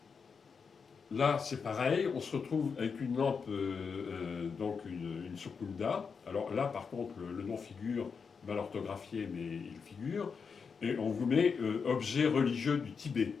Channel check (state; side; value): quieter; right; 5.7 dB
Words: Là, c'est pareil, on se retrouve avec une lampe, donc une Sukunda. Alors là, par contre, le nom figure mal orthographié, mais il figure. Et on vous met objet religieux du Tibet.